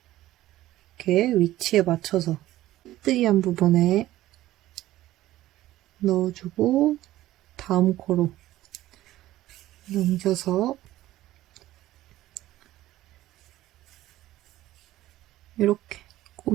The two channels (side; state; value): left; quieter; 15.2 dB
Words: 이렇게 위치에 맞춰서 빼뜨기한 부분에 넣어주고 다음 코로 넘겨서 이렇게